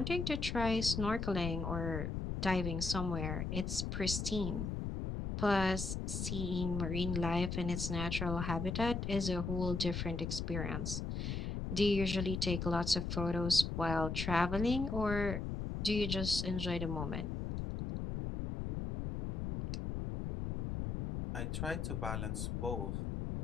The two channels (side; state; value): left; noise; rumble, 3 dB below the sound